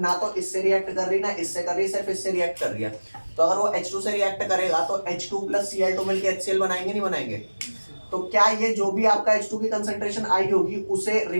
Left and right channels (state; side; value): inverted; both; correlation -1.00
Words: ना तो इससे रिएक्ट कर रही ना इससे कर रही, सिर्फ इससे रिएक्ट कर रही है। तो अगर वो H2 से रिएक्ट करेगा तो H2 प्लस Cl2 मिलकर HCl बनाएंगे नहीं बनाएंगे? तो क्या ये जो भी आपका H2 की कंसंट्रेशन आई होगी उसे